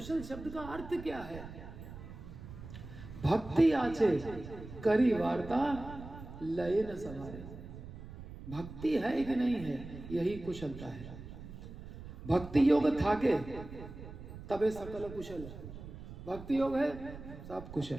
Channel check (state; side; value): noise; right; rumble, 13 dB below the sound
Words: शब्द का अर्थ क्या है? भक्ति आछे करी वार्ता लय न सवारे। भक्ति है कि नहीं है, यही कुशलता है। भक्ति योग थाके तबे सकल कुशल, भक्ति योग है सब कुशल।